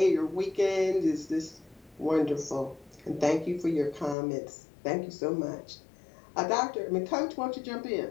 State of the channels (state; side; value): drops out; right; at 4.2 s